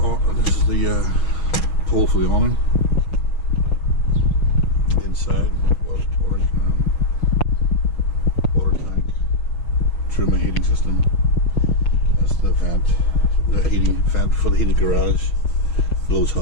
pole for the awning. Inside, water tank, trim and heating system. That's the vent, the heating vent for the heated garage. Blows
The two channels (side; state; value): right; late; 6.2 ms